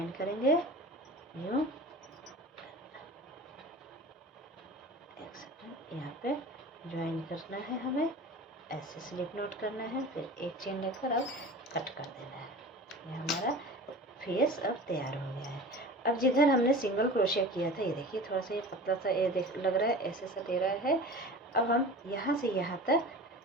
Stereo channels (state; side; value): normal; both; correlation 0.36